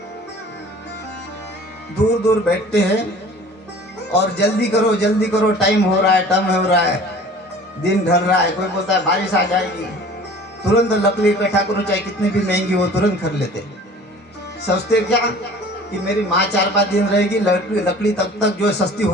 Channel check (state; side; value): normal; both; correlation 0.46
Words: दूर दूर बैठते हैं और जल्दी करो, टाइम हो रहा है, दिन ढल रहा है। कोई बोलता है बारिश आ जाएगी, तुरंत लकड़ी इकट्ठा करो, चाहे कितनी भी महंगी हो, तुरंत कर लेते। सोचते क्या कि मेरी माँ 4-5 दिन रहेगी, लकड़ी तब तक जो सस्ती